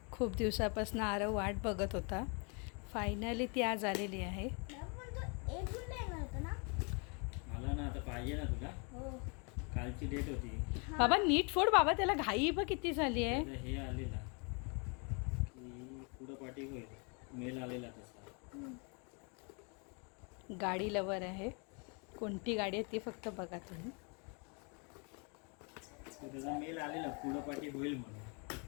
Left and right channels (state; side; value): quieter; right; 34.8 dB